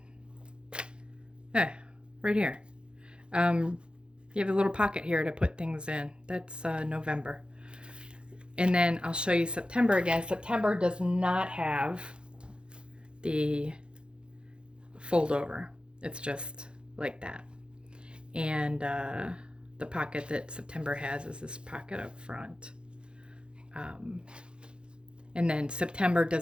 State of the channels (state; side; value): late; left; 0.054 ms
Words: Right here. You have a little pocket here to put things in. That's November. And then I'll show you September again. September does not have the fold over. It's just like that. And the pocket that September has is this pocket up front. And then September